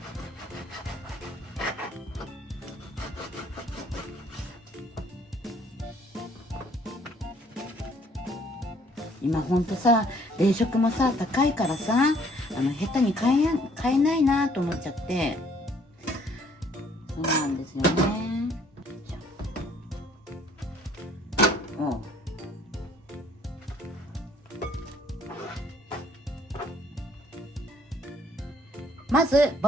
今ほんとさ、冷食もさ高いからさ、下手に買えないなと思っちゃって、そうなんですよね。まず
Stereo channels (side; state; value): both; normal; correlation 0.61